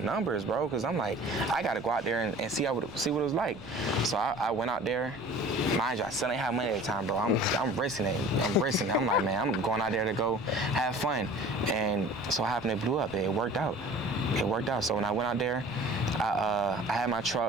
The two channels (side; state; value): right; noise; rumble, 20 dB below the sound